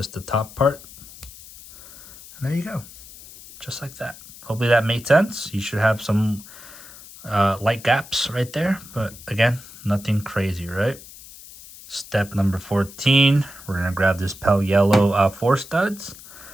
the top part, and there you go, just like that. Hopefully that made sense. You should have some light gaps right there, but again, nothing crazy, right? Step number 14, we're going to grab this pale yellow 4 studs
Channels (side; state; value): left; noise; hiss, 18 dB below the sound